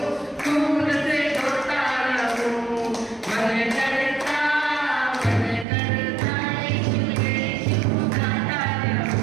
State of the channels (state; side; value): drops out; left; at 5.7 s